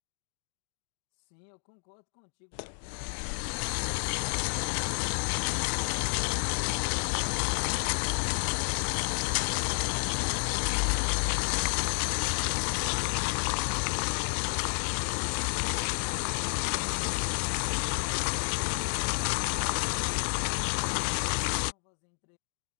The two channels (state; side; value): silent; right; 57 dB below the other